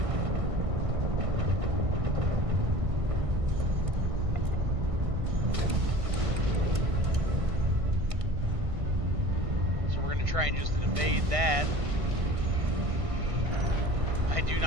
So we're going to try and just evade that. I do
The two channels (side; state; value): left; late; 1.6 ms